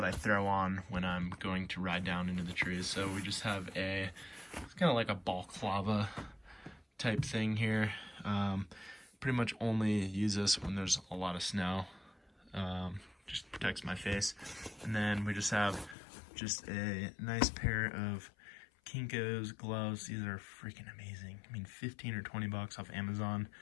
I throw on when I'm going to ride down into the trees. So we just have it's kind of like a balaclava type thing here. Pretty much only use this when there's a lot of snow. Just protects my face. And then we just have just a nice pair of Kinko's gloves. These are freaking amazing. I mean, 15 or 20 bucks off Amazon.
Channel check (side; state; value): right; drops out; at 16.0 s